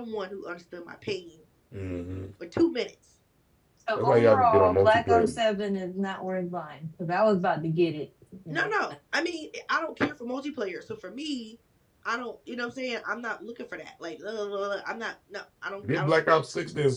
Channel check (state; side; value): identical; both; correlation 1.00